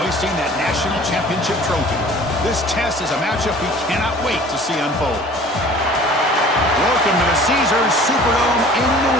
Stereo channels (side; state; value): both; normal; correlation 0.48